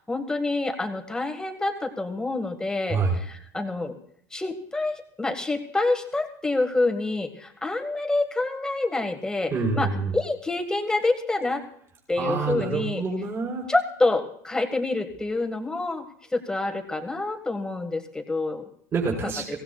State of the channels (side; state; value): both; normal; correlation 0.84